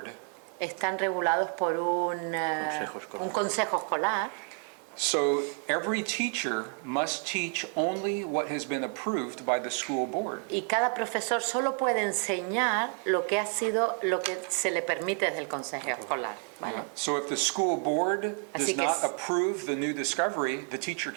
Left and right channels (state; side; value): quieter; left; 38.2 dB